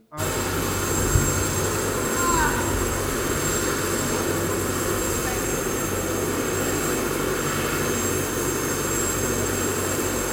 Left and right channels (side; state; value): both; identical; correlation 1.00